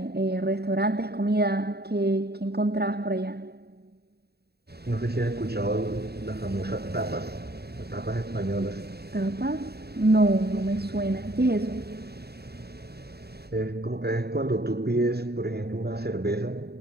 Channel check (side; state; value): left; late; 0.47 ms